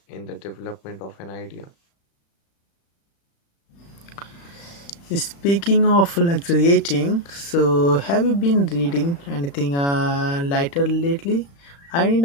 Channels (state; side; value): late; right; 35 ms